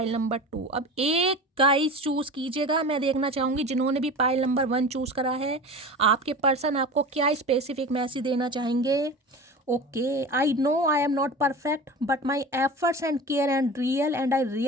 नंबर 2। अब एक गाइस चूज कीजिएगा, मैं देखना चाहूँगी जिन्होंने भी पाइल नंबर 1 चूज करा है, आपके पर्सन आपको क्या स्पेसिफिक मैसेज देना चाहेंगे। Okay, I know I am not perfect but my efforts and care and real and I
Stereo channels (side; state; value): both; normal; correlation 0.33